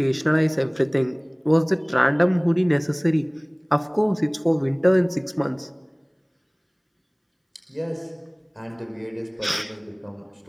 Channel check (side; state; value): both; identical; correlation 1.00